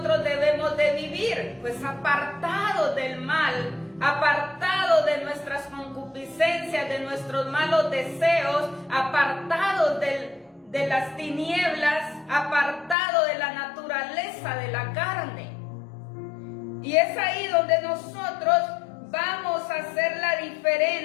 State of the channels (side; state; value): right; drops out; at 13.0 s